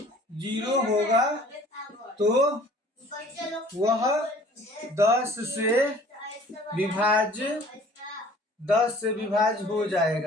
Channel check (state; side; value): normal; both; correlation 0.51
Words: 0 होगा, तो वह 10 से विभाज्य, 10 से विभाज्य हो